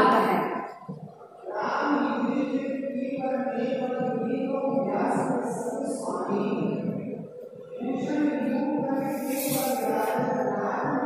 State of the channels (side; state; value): both; identical; correlation 1.00